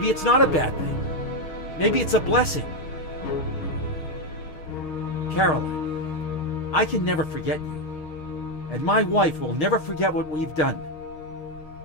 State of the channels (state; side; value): late; right; 6.5 ms